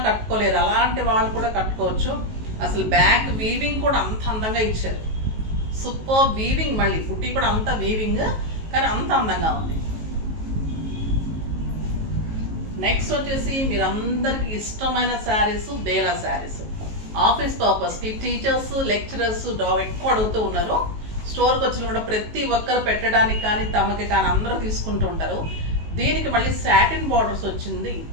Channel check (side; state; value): left; late; 19 ms